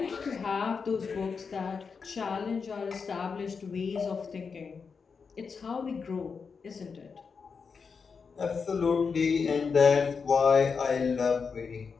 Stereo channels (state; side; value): quieter; right; 5.4 dB